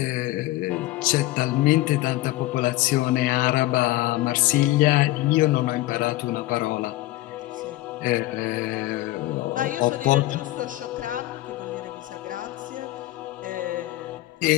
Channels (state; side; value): quieter; right; 17.4 dB